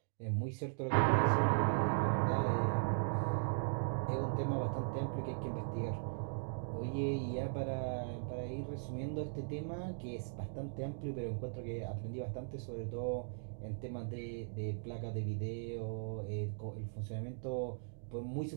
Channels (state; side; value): silent; left; digital silence